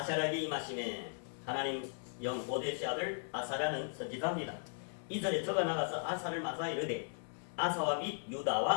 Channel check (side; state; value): right; silent; digital silence